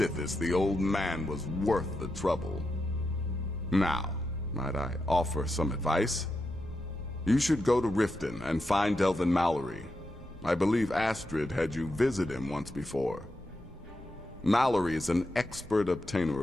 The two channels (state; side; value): normal; both; correlation 0.86